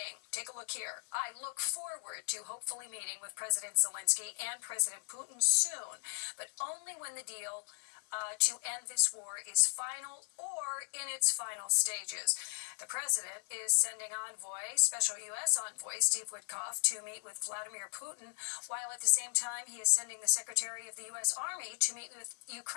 take a look here, I look forward to hopefully meeting with President Zelensky and President Putin soon, but only when the deal to end this war is final or in its final stages. The president is sending special U.S. envoy Steve Witkoff to meet with Vladimir Putin, while at the same time he is sending the Secretary of the U.S. Army to meet with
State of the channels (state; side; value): silent; right; digital silence